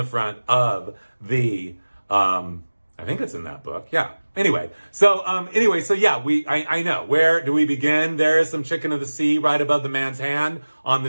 front of the, I think it's in that book. Yeah. Anyway, so yeah, I know. Where do we begin? There is some Chicken of the Sea right above the man's hand on the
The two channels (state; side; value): inverted; both; correlation -1.00